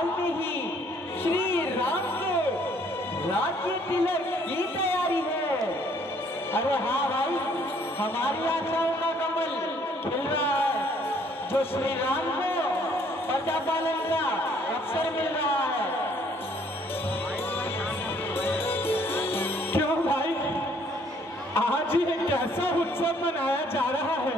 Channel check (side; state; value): both; normal; correlation 0.63